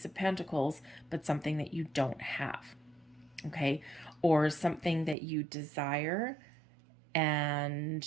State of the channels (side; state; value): left; drops out; at 5.2 s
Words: of Pentacles, but something that you don't have, okay? Or something that you desire